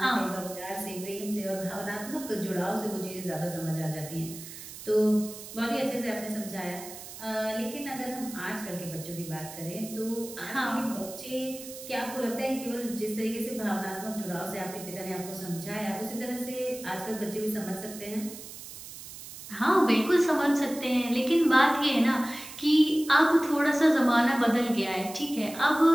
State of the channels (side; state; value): right; noise; hiss, 13 dB below the sound